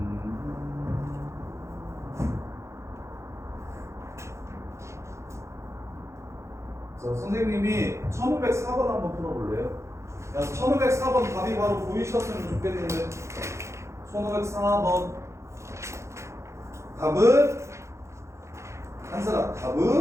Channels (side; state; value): left; late; 0.14 ms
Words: 자, 선생님이 1504번 한번 풀어볼래요? 야, 1504번 답이 바로 보이셨으면 좋겠는데 1504번 답은 한사람